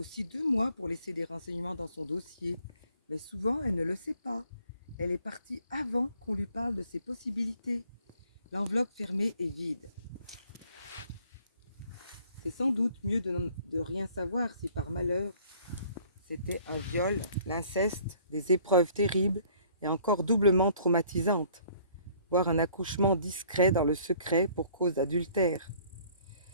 2 mois pour laisser des renseignements dans son dossier, mais souvent elle ne le sait pas. Elle est partie avant qu'on lui parle de ses possibilités. L'enveloppe fermée est vide. C'est sans doute mieux de rien savoir si par malheur c'était un viol, l'inceste, des épreuves terribles et encore doublement traumatisantes, voire un accouchement discret dans le secret pour cause d'adultère,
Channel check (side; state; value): both; inverted; correlation -0.57